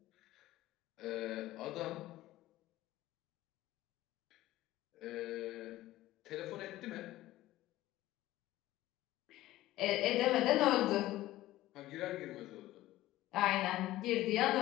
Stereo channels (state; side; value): quieter; right; 15.9 dB